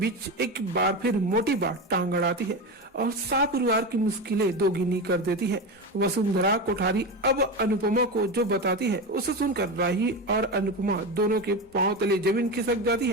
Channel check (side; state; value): both; normal; correlation 0.20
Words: एक बार फिर मोटी बात टांग अड़ाती है और सारे परिवार की मुश्किलें दोगुनी कर देती है। वसुंधरा कोठारी अब अनुपमा को जो बताती है उसे सुनकर राही और अनुपमा दोनों के पांव तले जमीन खिसक जाती